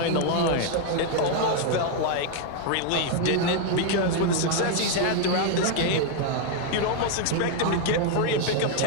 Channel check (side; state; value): both; different; correlation 0.01